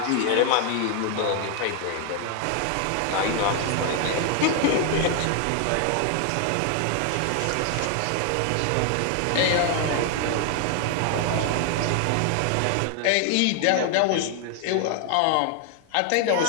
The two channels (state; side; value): different; both; correlation 0.00